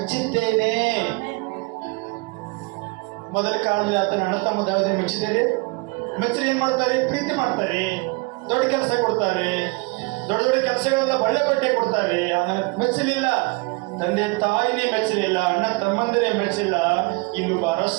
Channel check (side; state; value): left; quieter; 27.3 dB